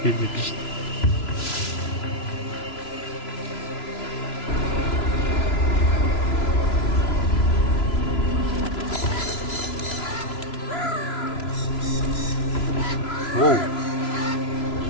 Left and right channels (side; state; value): right; late; 3.0 ms